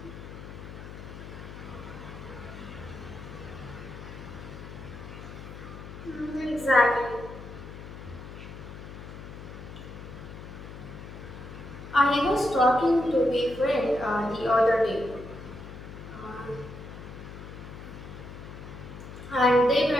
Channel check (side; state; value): left; noise; hum, 12 dB below the sound